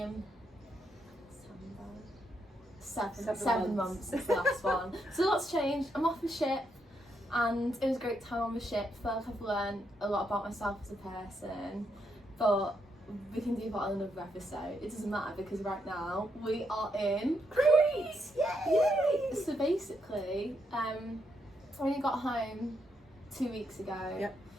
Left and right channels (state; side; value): normal; both; correlation 0.79